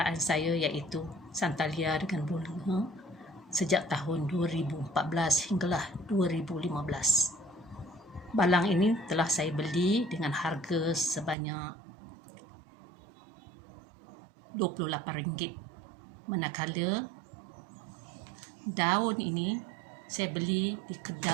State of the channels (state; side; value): drops out; left; at 11.4 s